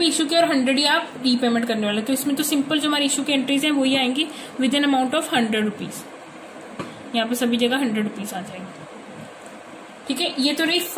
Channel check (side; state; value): both; identical; correlation 1.00